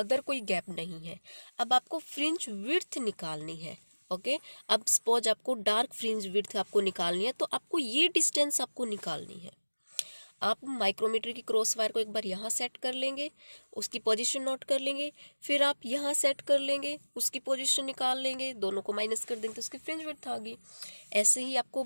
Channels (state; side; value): inverted; both; correlation -1.00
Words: कोई गैप नहीं है। अब आपको फ्रिंज विड्थ निकालनी है। ओके, अब सपोज आपको डार्क फ्रिंज विड्थ आपको निकालनी है, तो आपको ये डिस्टेंस आपको निकालनी है। आप माइक्रोमीटर की क्रॉस वायर को एक बार यहाँ सेट कर लेंगे, उसकी पोजीशन नोट कर लेंगे, फिर आप यहाँ सेट कर लेंगे, उसकी पोजीशन निकाल लेंगे, दोनों को माइनस कर देंगे तो उसकी फ्रिंज विड्थ आ गई। ऐसे ही आपको